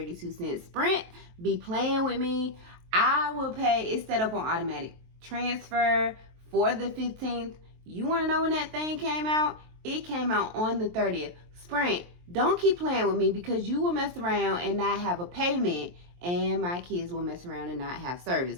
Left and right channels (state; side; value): late; left; 23 ms